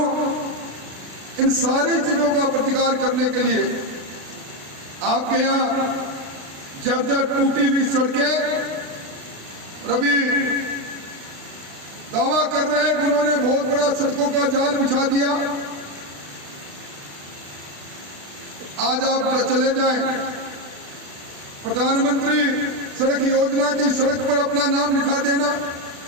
इन सारी चीजों का प्रतिकार करने के लिए आपके यहाँ जर्जर टूटी हुई सड़कें, अभी दावा कर रहे हैं कि उन्होंने बहुत बड़ा सड़कों का जाल बिछा दिया। आज आप चले जाएं, प्रधानमंत्री सड़क योजना की सड़क पर अपना नाम लिखा देना,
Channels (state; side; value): late; left; 36 ms